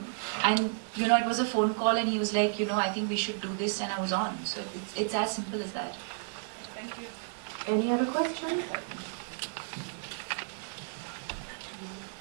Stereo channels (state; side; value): silent; left; digital silence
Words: it was a phone call, and he was like, I think we should do this, and I was on. So it's as simple as that. Thank you. Any other questions?